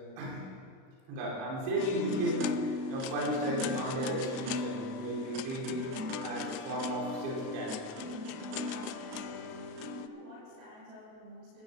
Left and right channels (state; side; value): late; left; 37 ms